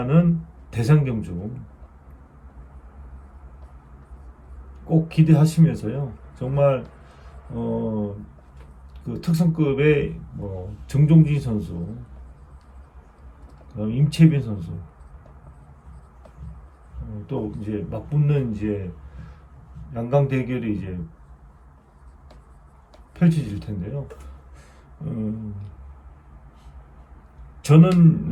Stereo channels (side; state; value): both; identical; correlation 1.00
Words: 대상 경주 꼭 기대하시면서요. 정말 그 특성급의 정종진 선수, 그다음 임채빈 선수, 또 이제 맞붙는 이제 양강 대결이 이제 펼쳐질 텐데요.